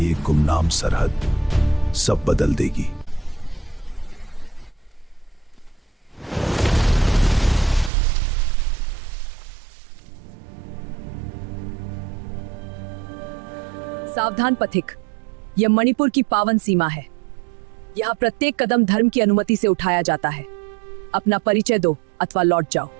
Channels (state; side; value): drops out; left; at 7.9 s